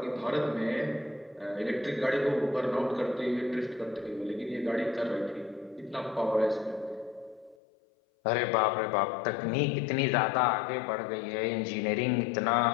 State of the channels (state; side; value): drops out; right; at 7.6 s